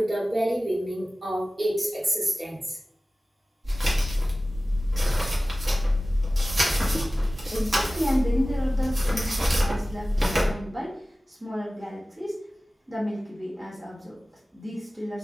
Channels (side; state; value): both; normal; correlation 0.97